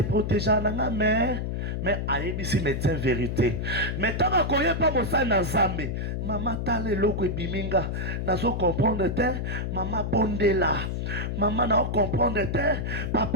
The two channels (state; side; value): noise; left; hum, 2 dB below the sound